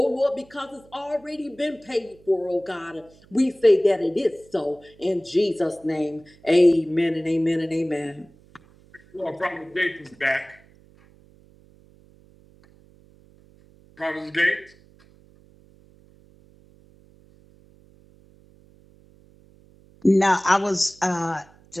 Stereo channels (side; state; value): right; noise; hum, 28 dB below the sound